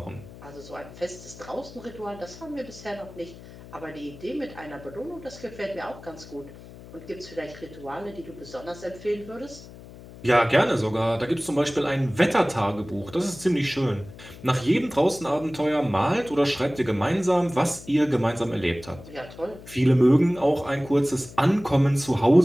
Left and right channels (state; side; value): noise; left; hum, 17 dB below the sound